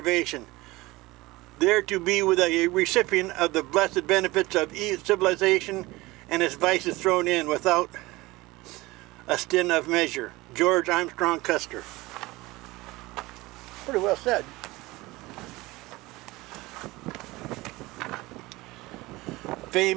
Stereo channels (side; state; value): left; quieter; 20.6 dB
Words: There to be with a recipient of the blessed benefits of civilization and its vices thrown in without a stint of measure. George Armstrong Custer. Pretty well said.